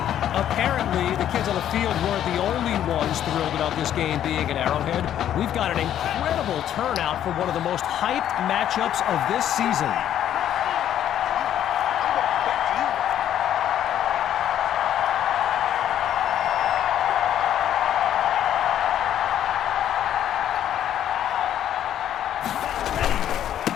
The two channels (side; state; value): right; quieter; 10.8 dB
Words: Apparently, the kids on the field weren't the only ones thrilled about this game being at Arrowhead. We've got an incredible turnout for one of the most hyped matchups of this season.